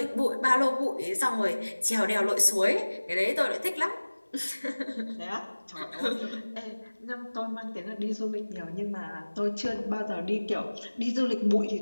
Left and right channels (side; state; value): both; inverted; correlation -1.00